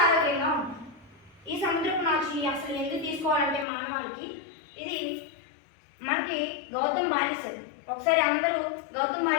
ఆరోగ్యంగా ఉంటారు. ఈ సముద్రపు నాచుని అసలు ఎందుకు తీసుకోవాలంటే మానవాళికి ఇది మనకి గౌతమ్ బానిసలు. ఒకసారి అందరూ గౌతమ్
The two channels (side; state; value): right; drops out; at 3.7 s